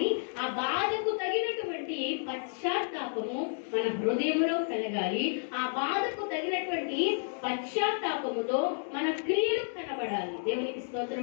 ఆ బాధకు తగినటువంటి పశ్చాత్తాపము మన హృదయంలో కలగాలి. ఆ బాధకు తగినటువంటి పశ్చాత్తాపముతో మన క్రియలు కనబడాలి. దేవునికి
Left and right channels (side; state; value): right; silent; digital silence